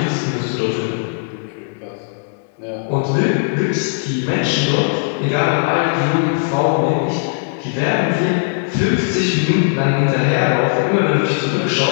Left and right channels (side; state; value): right; silent; 67 dB below the other